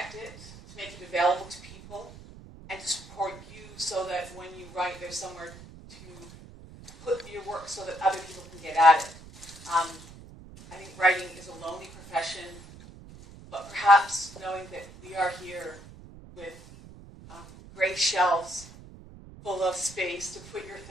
it, to make it available to people, and to support you so that when you write, there's somewhere to put your work so that other people can get at it. I think writing is a lonely profession, but perhaps knowing that we are here with gray shelves full of space to put your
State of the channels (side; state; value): right; noise; rumble, 18 dB below the sound